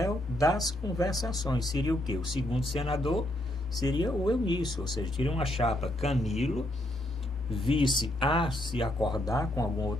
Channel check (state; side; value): normal; both; correlation 0.75